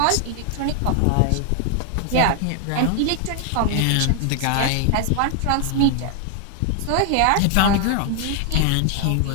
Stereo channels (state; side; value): different; both; correlation 0.00